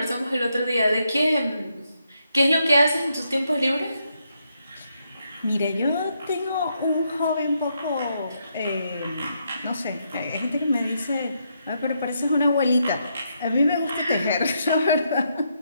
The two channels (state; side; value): inverted; both; correlation -0.79